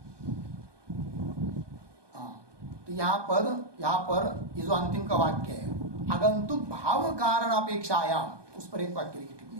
हाँ, तो यहां पर ये जो अंतिम का वाक्य है, आगंतुक भाव कारण अपेक्षायाम, उस पर एक वाक्य की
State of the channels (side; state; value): left; late; 1.2 ms